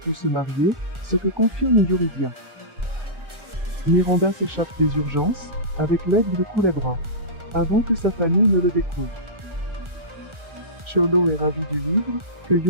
se marier, ce que confirme Yuridia. Miranda s'échappe des urgences, avec l'aide de Culebra, avant que sa famille ne le découvre. Cholo est ravi du livre que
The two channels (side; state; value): left; late; 1.4 ms